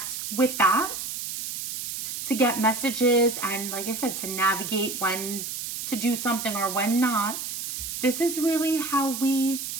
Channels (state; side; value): noise; right; hiss, 5 dB below the sound